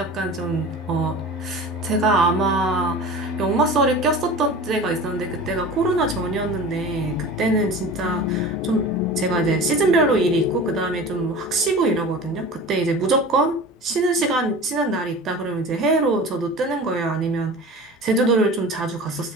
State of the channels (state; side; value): normal; both; correlation 0.36